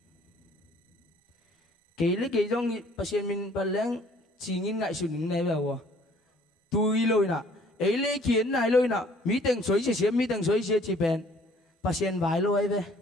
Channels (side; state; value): both; normal; correlation 0.57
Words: cái lấy cái trong pasien min baleng chỉ nhìn ngại sụn này vào tôi lôi nè ấy lấy kiến này lôi nè mỹ tầng suối chỉ bền pasien vài lôi về